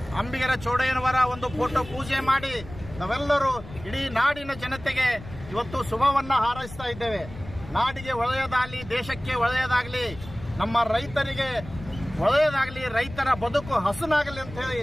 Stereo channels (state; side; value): noise; left; rumble, 15 dB below the sound